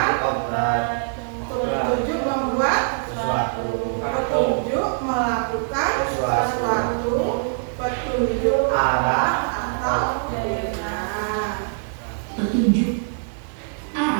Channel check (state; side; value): silent; left; digital silence